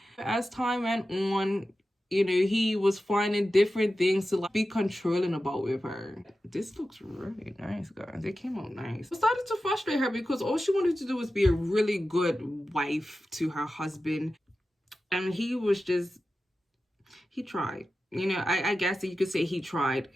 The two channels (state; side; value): normal; both; correlation 0.93